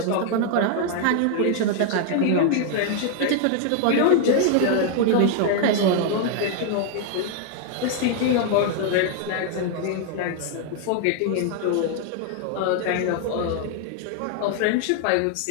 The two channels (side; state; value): both; different; correlation 0.00